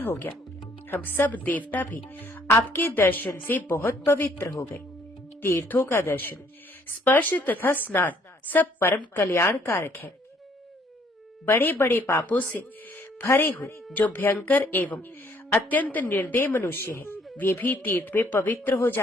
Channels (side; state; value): both; normal; correlation 0.63